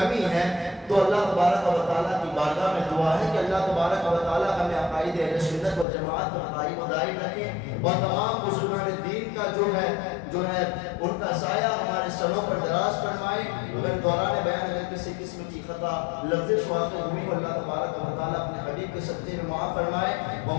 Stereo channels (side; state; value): right; drops out; at 5.9 s